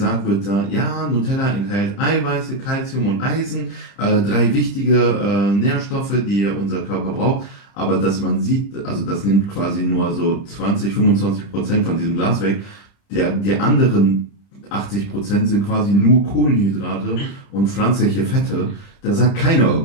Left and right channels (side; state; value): right; late; 30 ms